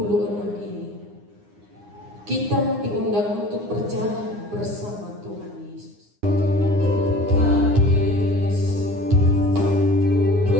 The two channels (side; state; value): left; late; 9.7 ms